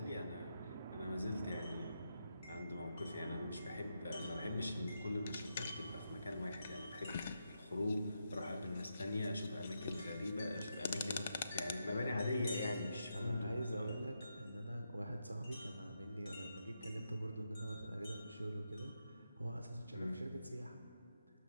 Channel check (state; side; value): inverted; both; correlation -0.84